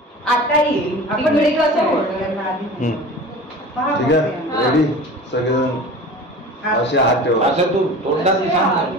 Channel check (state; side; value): normal; both; correlation 0.38